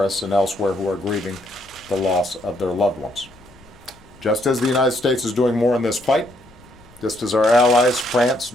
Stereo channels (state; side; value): noise; left; rumble, 26 dB below the sound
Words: and elsewhere who are grieving the loss of their loved ones. Just as the United States is doing more in this fight, just as our allies, France,